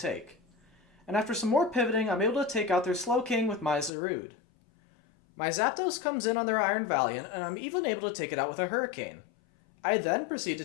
And after some more pivoting, I'm able to take out their Slowking with my Zarude. My Zapdos comes in on their Iron Valiant, and I'm even able to take it out with a Hurricane. I then proceed to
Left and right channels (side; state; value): right; drops out; at 3.9 s